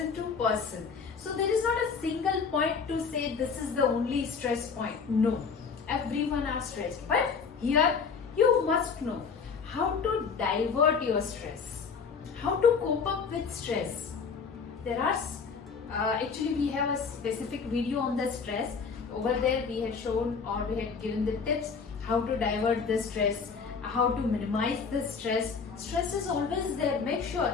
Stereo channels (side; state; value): right; quieter; 5.6 dB